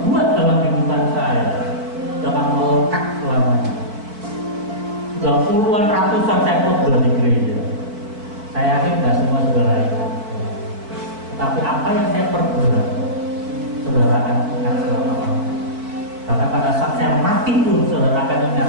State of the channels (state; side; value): late; left; 4.6 ms